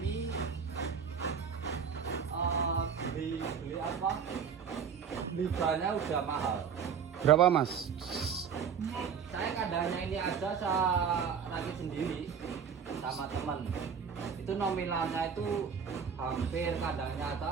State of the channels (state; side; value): quieter; left; 6.9 dB